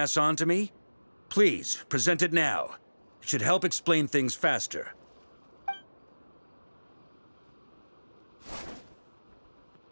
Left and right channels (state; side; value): inverted; both; correlation -1.00